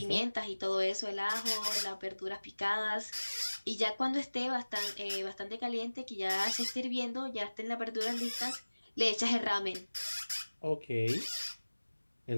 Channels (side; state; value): both; inverted; correlation -1.00